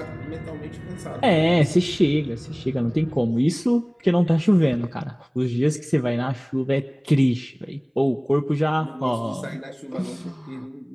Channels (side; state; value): both; identical; correlation 1.00